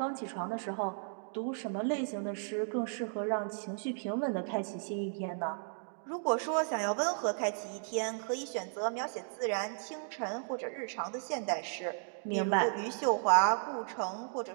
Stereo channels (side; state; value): left; silent; digital silence